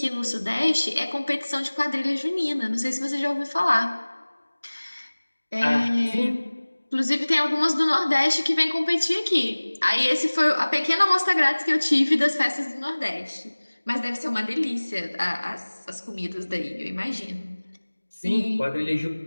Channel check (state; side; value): inverted; both; correlation -1.00